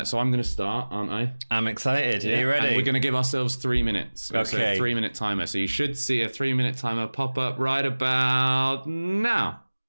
I'm gonna start, aren't I? I'm excited. Are you ready? And we're gonna give ourselves 3 minutes. Okay. So a 3-minute timer. So you should see a 3-minute timer pop up right about now.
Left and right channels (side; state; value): both; inverted; correlation -1.00